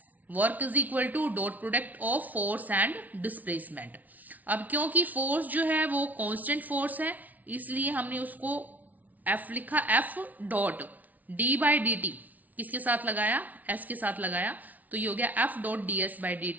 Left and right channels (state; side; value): late; left; 0.076 ms